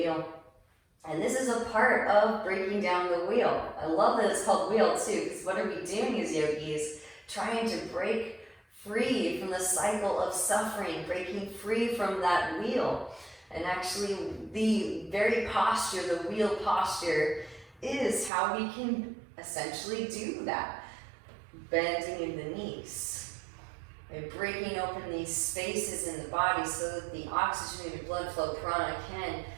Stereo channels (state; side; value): drops out; left; at 18.3 s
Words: And this is a part of breaking down the wheel. I love that it's called wheel too, because what are we doing as yogis? Trying to break free from the cycle of suffering, breaking free from that wheel. And actually the very posture, the wheel posture, is how we can essentially do that. Bending in the knees. By breaking open these spaces in the body so that the oxygenated blood flow prana can